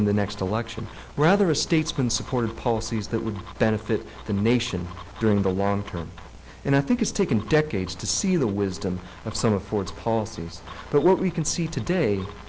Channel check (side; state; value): both; identical; correlation 1.00